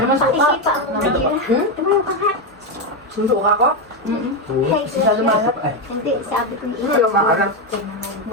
man sa pakisipa. Ito mo yung kahat. Sundo ka ko? Hey, Siya lumalap. Hindi, sabi ko yung Yung maarap.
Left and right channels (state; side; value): normal; both; correlation 0.08